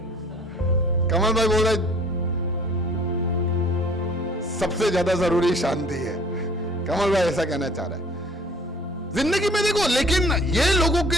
कमल भाई बोल रहे सबसे ज्यादा जरूरी शांति है। कमल भाई ऐसा कहना चाह रहा है। जिंदगी में देखो, लेकिन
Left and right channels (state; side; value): normal; both; correlation 0.53